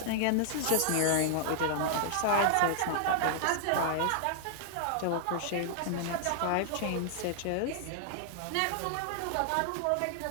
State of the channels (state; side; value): different; both; correlation -0.01